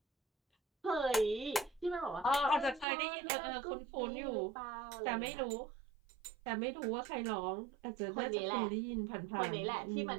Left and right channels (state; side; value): drops out; left; at 2.9 s